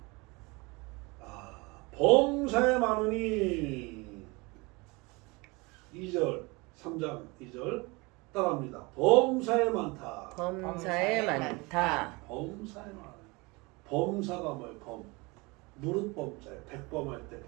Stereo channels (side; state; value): left; quieter; 25.8 dB